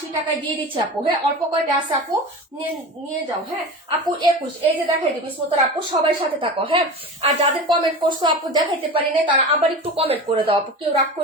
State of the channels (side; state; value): both; normal; correlation 0.30